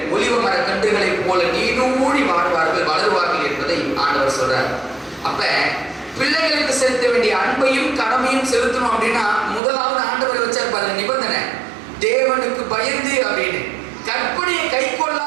ஒலிவ மர கன்றுகளை போல நீடூழி வாழ்வார்கள், வளருவார்கள் என்பதை ஆண்டவர் சொல்றார். அப்ப பிள்ளைகளுக்கு செலுத்த வேண்டிய அன்பையும் கடமையும் செலுத்தணும் அப்படின்னா முதலாவது ஆண்டவர் வச்சார் பாருங்க நிபந்தனை, தேவனுக்கு பயந்து அப்படின்னு. கற்பனையை கை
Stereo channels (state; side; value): drops out; left; at 9.6 s